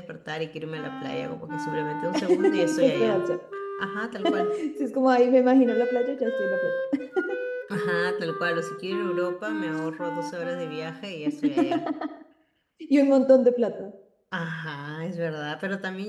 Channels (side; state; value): both; identical; correlation 1.00